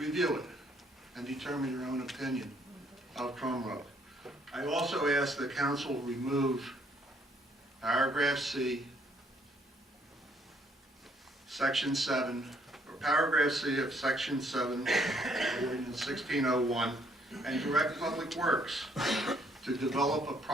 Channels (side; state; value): both; normal; correlation 0.67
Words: it and determine your own opinion of crumb rubber. I also ask the council remove paragraph C, section 7, or paragraph C of section 7 of ordinance 1601, and direct Public Works to develop a